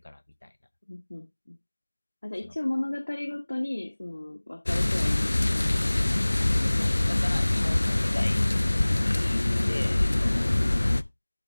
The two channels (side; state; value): both; inverted; correlation -1.00